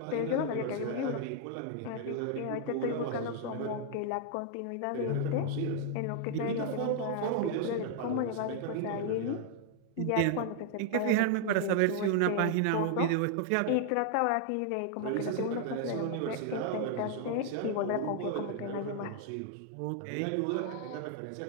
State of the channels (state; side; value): different; both; correlation 0.00